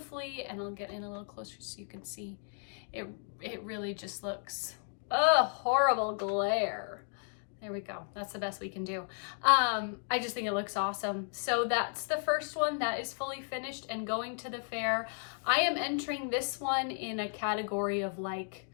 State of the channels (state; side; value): silent; right; 55 dB below the other